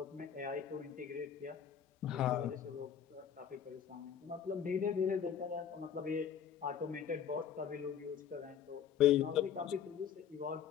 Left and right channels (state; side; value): quieter; right; 8.3 dB